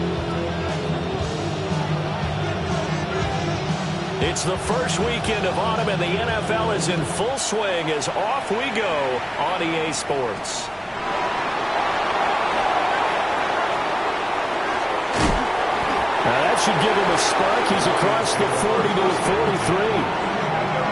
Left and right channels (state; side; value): identical; both; correlation 1.00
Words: It's the first weekend of autumn, and the NFL is in full swing as off we go on EA Sports. Now that should give him a spark. He's across the 40 to the 43.